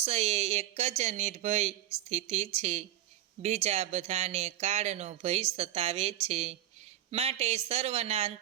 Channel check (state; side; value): quieter; left; 12.7 dB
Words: એ એક જ નિર્ભય સ્થિતિ છે. બીજા બધાને કાળનો ભય સતાવે છે. માટે સર્વના